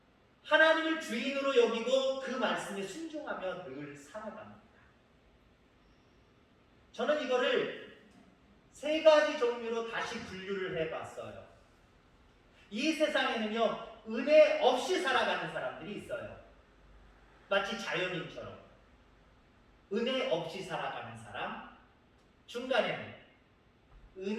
하나님을 주인으로 여기고 그 말씀에 순종하며 늘 살아갑니다. 저는 이거를 세 가지 종류로 다시 분류를 해봤어요. 이 세상에는요, 은혜 없이 살아가는 사람들이 있어요. 마치 자연인처럼. 은혜 없이 살아가는 사람, 중간에는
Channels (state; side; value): identical; both; correlation 1.00